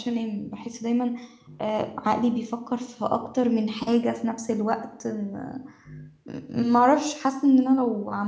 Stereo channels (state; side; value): identical; both; correlation 1.00